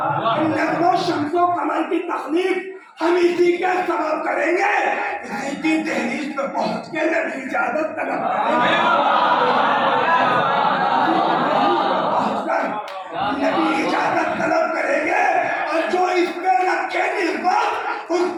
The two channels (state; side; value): identical; both; correlation 1.00